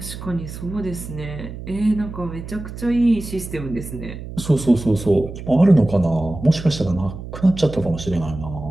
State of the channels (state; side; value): noise; right; hum, 11 dB below the sound